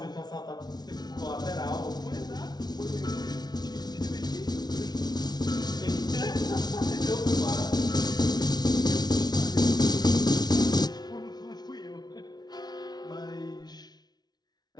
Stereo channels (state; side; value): late; right; 0.19 ms